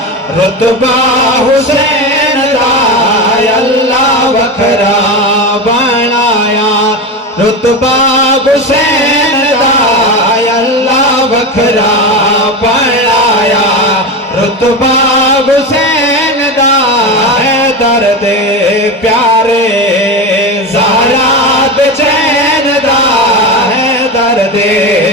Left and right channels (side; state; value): both; normal; correlation 0.21